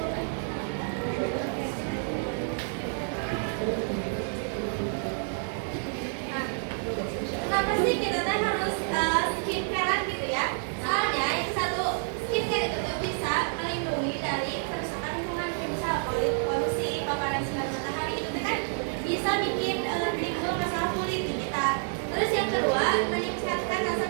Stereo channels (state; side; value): silent; left; 59 dB below the other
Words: Kenapa sih kita teh harus skincarean gitu ya? Soalnya yang satu, skincare itu tuh bisa melindungi dari kerusakan lingkungan, misal polusi, paparan sinar matahari itu tuh kan bisa bikin timbul masalah kulit di kita. Terus yang kedua, meningkatkan rasa